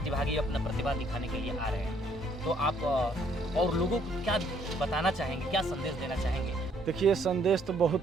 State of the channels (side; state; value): both; normal; correlation 0.66